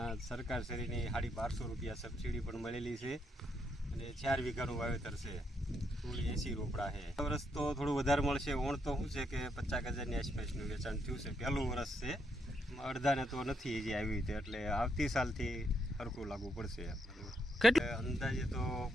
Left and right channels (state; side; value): normal; both; correlation 0.77